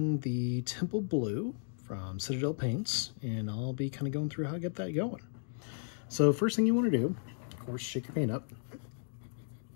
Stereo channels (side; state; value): right; silent; digital silence